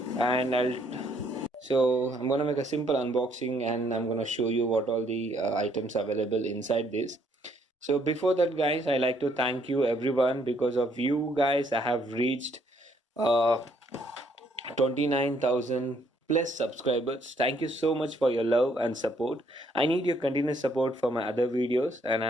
and I'm gonna make a simple unboxing, and I'm gonna show you what all the items available inside this. So before that, guys, I like to thank you everyone. Because of you guys, I have reached uh, 29,000 plus subscribers. Thank you so much for your love and support. I need your continuous support for my other videos, and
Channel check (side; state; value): both; normal; correlation 0.68